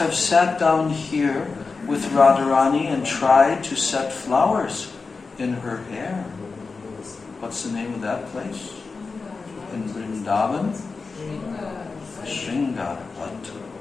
sat down here with Radharani and tried to set flowers in her hair. What's the name of that place? In Vrindavan? Sringavat.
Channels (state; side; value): quieter; right; 4.4 dB